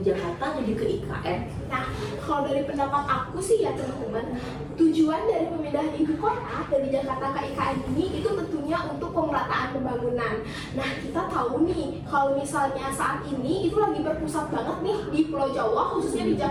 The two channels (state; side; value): identical; both; correlation 1.00